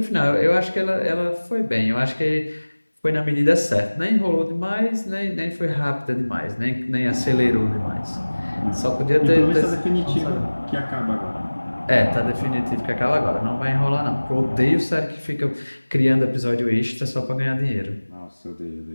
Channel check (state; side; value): inverted; both; correlation -1.00